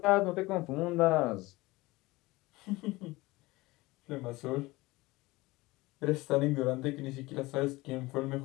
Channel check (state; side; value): quieter; right; 20.7 dB